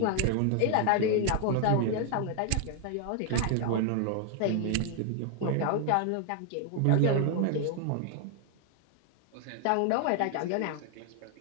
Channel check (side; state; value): both; different; correlation 0.00